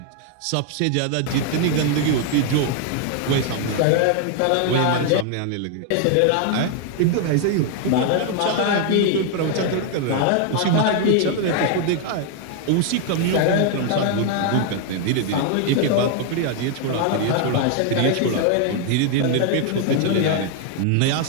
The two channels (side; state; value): both; different; correlation 0.00